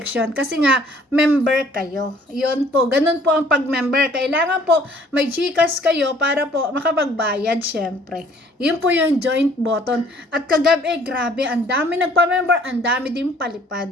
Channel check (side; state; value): both; normal; correlation 0.58